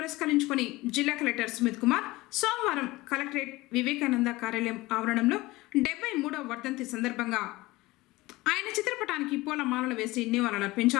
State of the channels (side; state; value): right; quieter; 20.0 dB